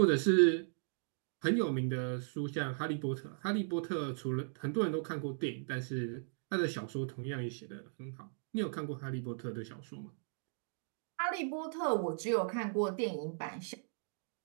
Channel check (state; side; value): silent; left; digital silence